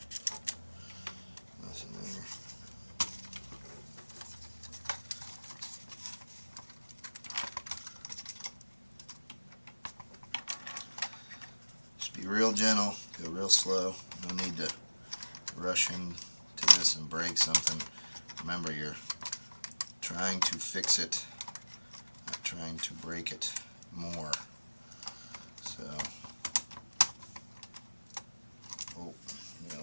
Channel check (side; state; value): both; inverted; correlation -1.00